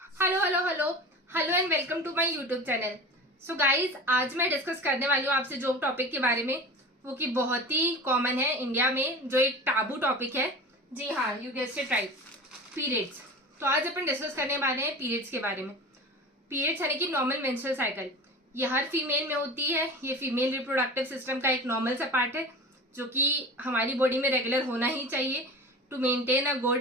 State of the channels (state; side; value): normal; both; correlation 0.33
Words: Hello hello hello hello and welcome to my YouTube channel. So guys, आज मैं discuss करने वाली हूँ आपसे जो टॉपिक के बारे में, वो कि बहुत ही कॉमन है इंडिया में, जो एक टाबू टॉपिक है। जी हाँ, you guessed it right, periods. तो आज अपन डिस्कस करने वाले हैं पीरियड्स के बारे में। पीरियड्स यानी कि नॉर्मल मेंस्ट्रुअल साइकिल, ये हर फीमेल में होती है। ये फीमेल रिप्रोडक्टिव सिस्टम का एक नॉर्मल सा पार्ट है जो कि हमारी बॉडी में रेगुलर होना ही चाहिए to maintain a good